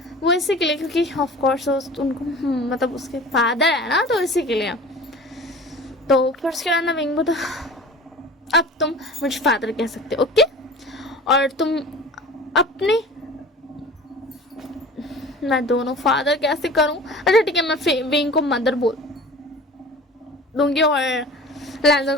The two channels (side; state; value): both; normal; correlation 0.41